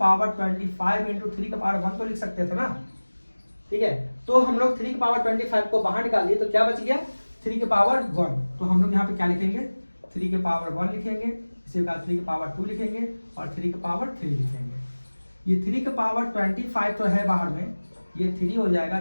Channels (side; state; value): both; inverted; correlation -1.00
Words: 25 इंटू 3 के पावर 1 तो लिख सकते थे ना, ठीक है। तो हम लोग 3 के पावर 25 को बाहर निकाल दिए तो क्या बच गया 3 के पावर 1। तो हम लोग यहाँ पे क्या लिखेंगे, 3 के पावर 1 लिखेंगे, इसी प्रकार 3 के पावर 2 लिखेंगे और 3 के पावर 3 लिखेंगे। ये 3 के पावर 25 तो है बाहर में, ये 3 हो जाएगा,